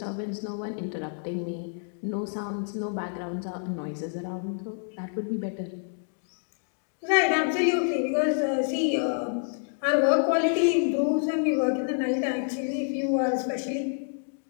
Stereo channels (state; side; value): silent; right; digital silence